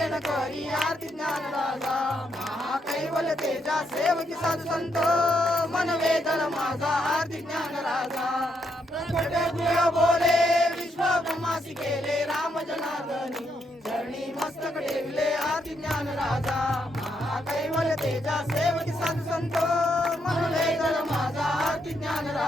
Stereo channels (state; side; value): normal; both; correlation 0.78